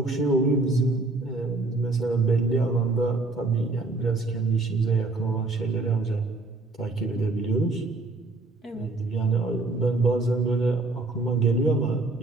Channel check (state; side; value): quieter; left; 3.2 dB